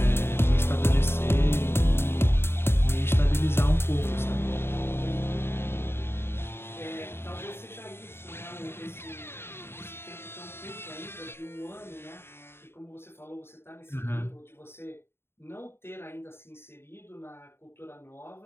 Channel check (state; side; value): late; right; 0.11 ms